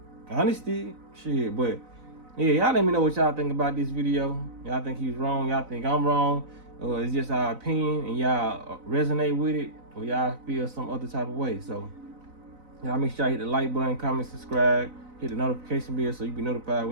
Honesty, shit, but yeah, y'all let me know what y'all think about this video. Y'all think he was wrong, y'all think I'm wrong. Or it's just our opinion and y'all resonate with it, or y'all feel some other type of way. So y'all make sure y'all hit the like button, comment, subscribe, hit the notification bell so you be notified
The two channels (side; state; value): left; late; 4.0 ms